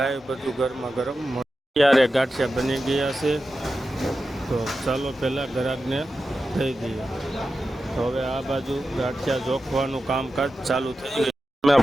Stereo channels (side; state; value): both; normal; correlation 0.92